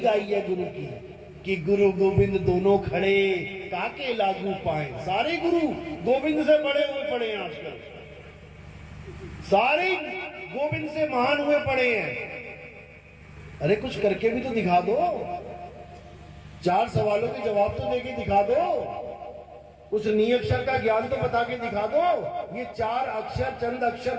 गाई है गुरु की कि गुरु गोविंद दोनों खड़े काके लागू पाए। सारे गुरु गोविंद से बड़े हुए पड़े हैं आजकल, सारे गोविंद से महान हुए पड़े हैं। अरे कुछ करके भी तो दिखा दो, 4 सवालों के जवाब तो देके दिखा दो, उस नियक्षर का ज्ञान तो बता के दिखा दो। ये 4 अक्षर, चंद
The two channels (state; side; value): identical; both; correlation 1.00